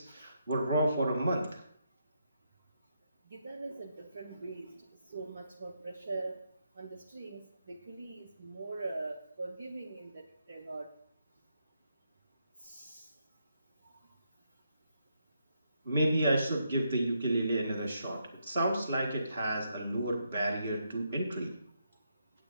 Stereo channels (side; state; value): both; inverted; correlation -0.79